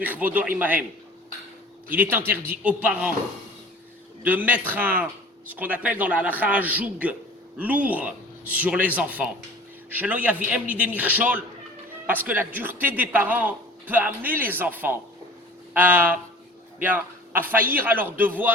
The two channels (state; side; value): normal; both; correlation 0.44